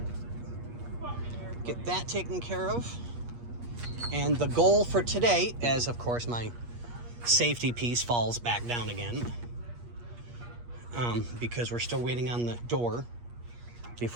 Get that taken care of. And the goal for today, as of course my safety piece falls back down again, because we're still waiting on the door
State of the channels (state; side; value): late; left; 8.4 ms